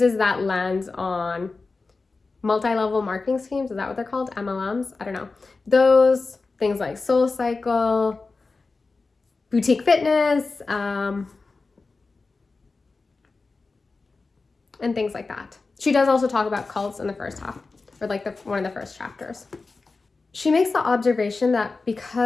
that lens on multi-level marketing schemes. Is that what they're called? MLMs? I don't know. Those things like Soul Cycle, boutique fitness, and things like that. She does also talk about cults in the first half, or like one of the first chapters. She makes the observation that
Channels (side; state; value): right; quieter; 3.9 dB